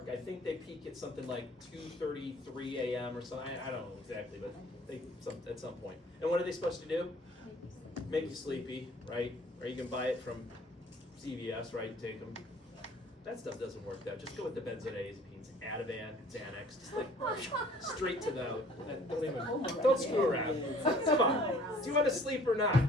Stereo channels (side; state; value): both; normal; correlation 0.54